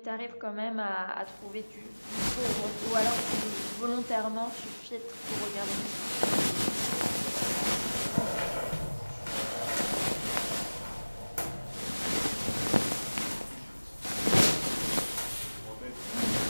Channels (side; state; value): both; inverted; correlation -1.00